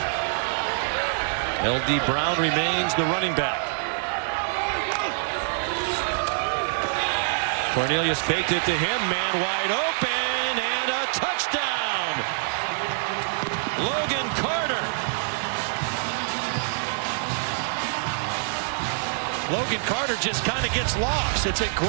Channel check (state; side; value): silent; left; digital silence